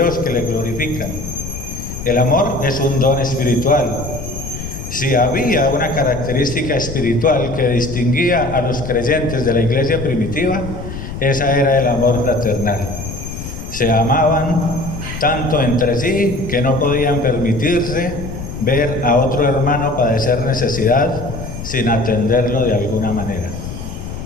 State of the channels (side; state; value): left; noise; rumble, 9 dB below the sound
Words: que le glorifican. El amor es un don espiritual. Si había una característica espiritual que distinguía a los creyentes de la iglesia primitiva, esa era el amor fraternal. Se amaban tanto entre sí que no podían permitirse ver a otro hermano padecer necesidad sin atenderlo de alguna manera.